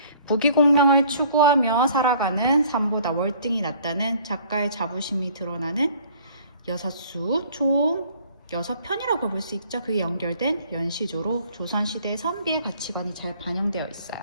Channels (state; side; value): inverted; both; correlation -0.55